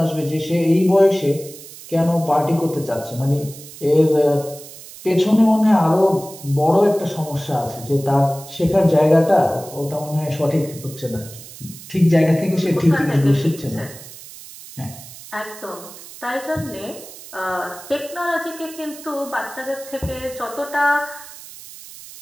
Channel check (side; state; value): right; noise; hiss, 16 dB below the sound